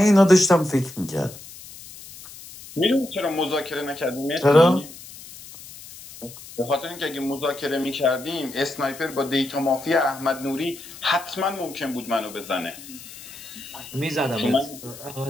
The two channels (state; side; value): noise; left; hiss, 16 dB below the sound